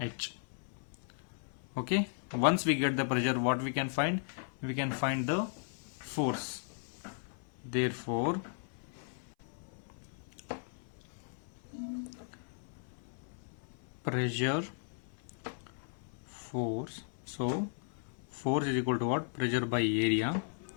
Okay, once we get the pressure, what we can find? We can find the force. Therefore, pressure, force. So force is equal to what? Pressure by area.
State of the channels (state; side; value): silent; right; 54 dB below the other